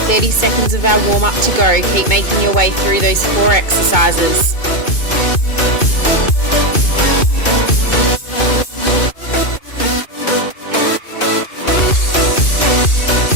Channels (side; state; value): right; late; 2.3 ms